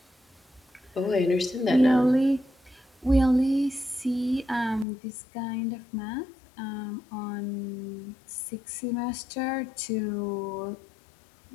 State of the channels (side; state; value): right; drops out; at 4.9 s